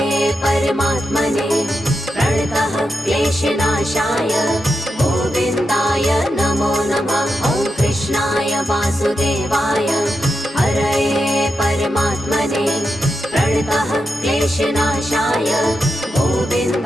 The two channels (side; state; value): both; normal; correlation 0.87